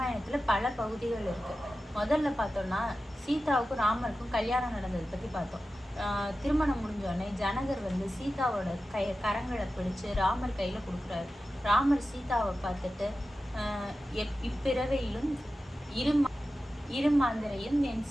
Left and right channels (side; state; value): both; normal; correlation 0.93